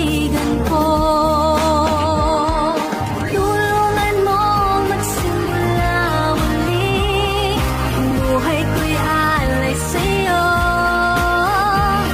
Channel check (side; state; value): both; identical; correlation 1.00